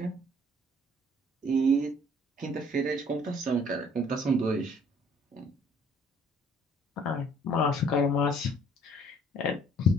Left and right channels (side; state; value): both; normal; correlation 0.58